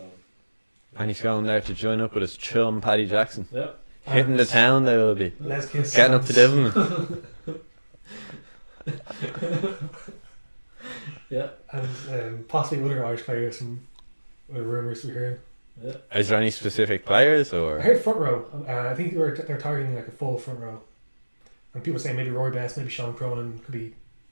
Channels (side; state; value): both; inverted; correlation -1.00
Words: And he's going there to join up with his chum Paddy Jackson. yeah. Hitting the town they will be. Les Kiss. Getting up to Devon. Yeah. And possibly other Irish players from rumours we're hearing. Yeah. Is there any specific players I or? heard front row. I think they're targeting like a full front row. And people saying maybe Roy Best, maybe Sean Cronin could be.